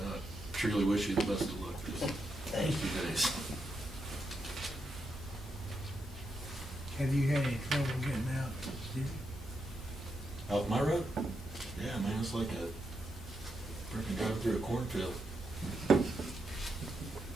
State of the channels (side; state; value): both; normal; correlation 0.83